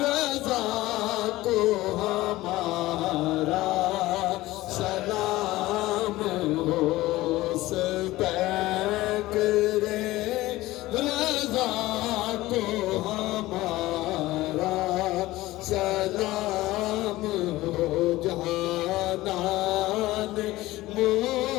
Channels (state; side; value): quieter; right; 17.8 dB